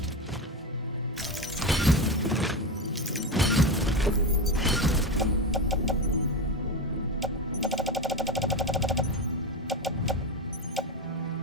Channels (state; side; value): normal; both; correlation 0.16